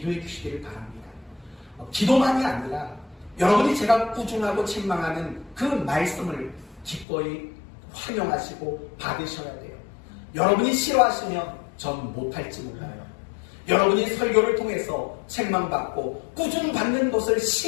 주시기를 바랍니다. 기도만이 아니라 여러분이 제가 꾸중하고 책망하는 그 말씀을 기꺼이 환영하시고 받으셔야 돼요. 여러분이 싫어하시면 전 못할지 몰라요. 여러분이 설교를 통해서 책망받고 꾸중받는 것을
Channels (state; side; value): drops out; right; at 7.1 s